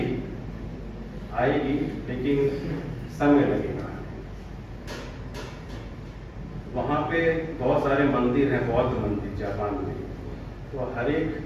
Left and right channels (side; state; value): both; identical; correlation 1.00